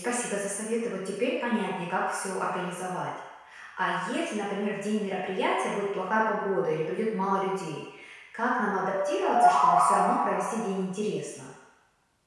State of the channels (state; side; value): identical; both; correlation 1.00